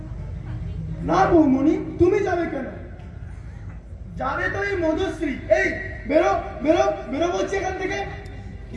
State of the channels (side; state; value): both; identical; correlation 1.00